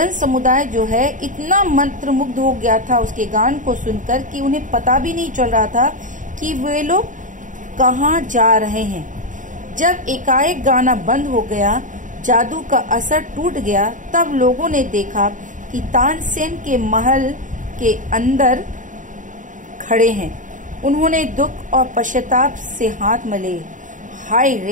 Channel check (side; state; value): left; late; 0.37 ms